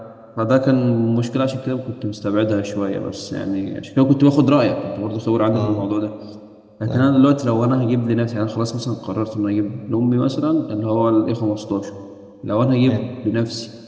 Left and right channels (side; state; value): both; identical; correlation 1.00